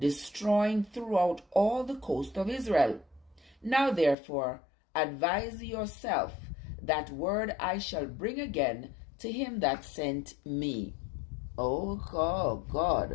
throughout all the coast of Israel. Now therefore advise yourself, that word I shall bring again to him that sent me. Oh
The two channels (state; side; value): drops out; right; at 4.2 s